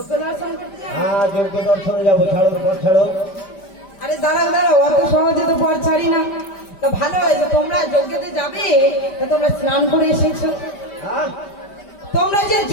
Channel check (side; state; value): right; late; 5.1 ms